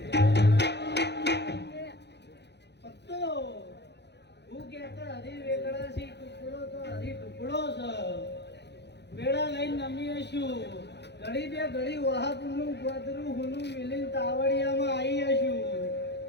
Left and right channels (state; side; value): late; right; 0.50 ms